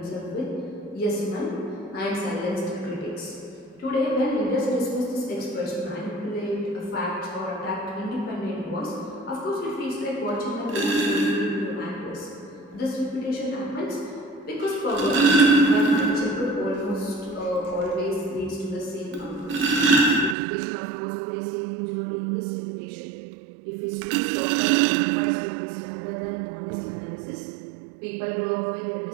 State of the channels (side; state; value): left; drops out; at 20.4 s